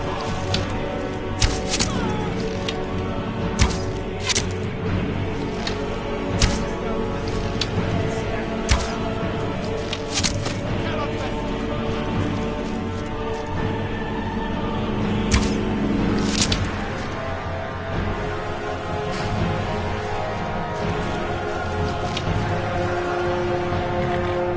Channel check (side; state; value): both; identical; correlation 1.00